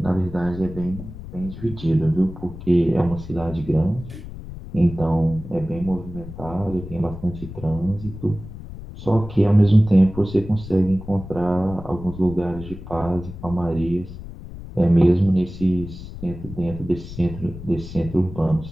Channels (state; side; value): noise; left; rumble, 12 dB below the sound